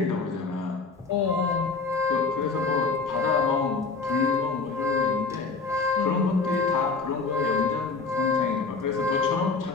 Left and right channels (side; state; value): right; quieter; 4.3 dB